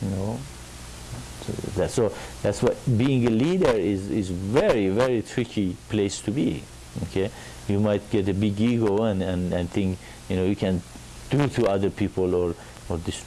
So that's what being a leader is very, very tricky place to be. Okay, you might get a big ego and think you can do to other people or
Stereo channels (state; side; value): identical; both; correlation 1.00